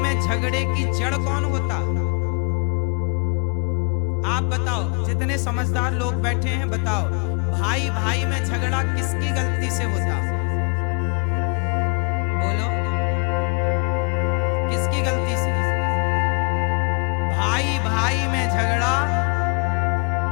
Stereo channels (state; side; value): quieter; right; 34.1 dB